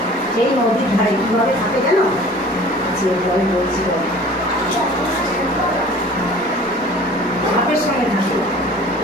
সেই নদীর ধারে কীভাবে থাকে জানো? যে বলে বলছি, সাপের সঙ্গে থাকে,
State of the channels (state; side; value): normal; both; correlation 0.46